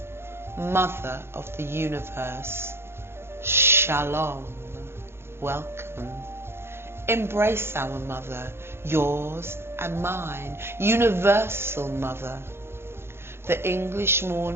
mother of the universe, shalom, welcome. Embrace our mother, yours and mine, universal mother. The English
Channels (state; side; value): late; left; 0.12 ms